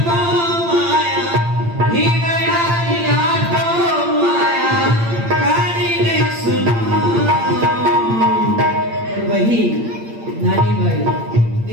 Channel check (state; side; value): late; left; 8.7 ms